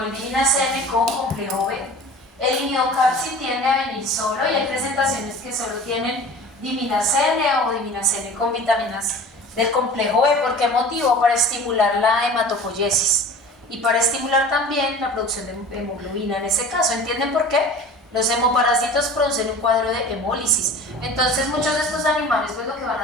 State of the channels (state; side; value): normal; both; correlation 0.41